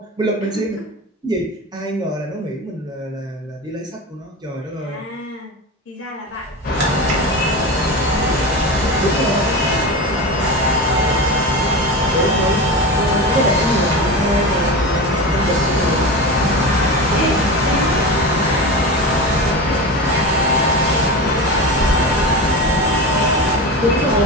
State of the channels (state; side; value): normal; both; correlation 0.25